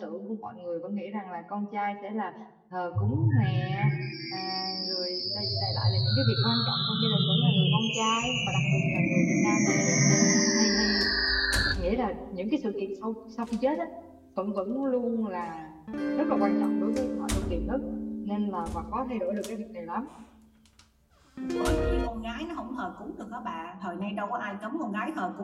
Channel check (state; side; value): identical; both; correlation 1.00